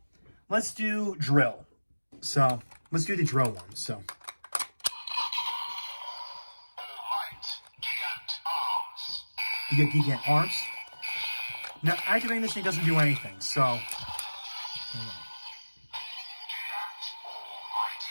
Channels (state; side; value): inverted; both; correlation -1.00